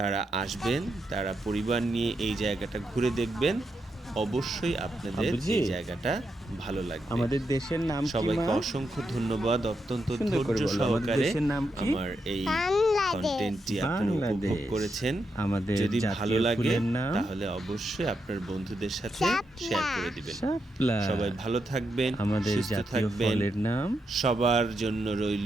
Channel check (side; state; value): both; normal; correlation 0.83